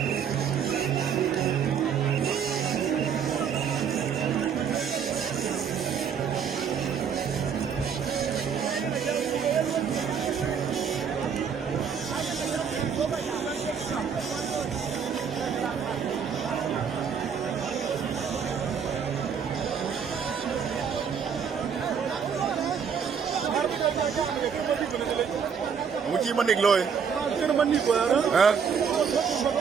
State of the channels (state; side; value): quieter; left; 7.0 dB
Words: Muci manik loy. Kena manik gua ada. Hah?